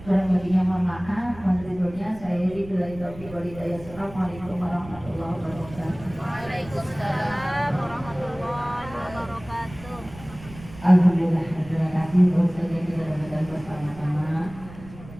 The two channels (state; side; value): noise; right; rumble, 17 dB below the sound